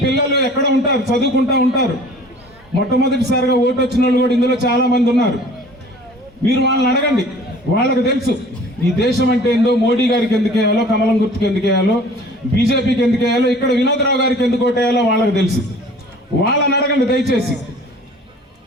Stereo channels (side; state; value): both; normal; correlation 0.48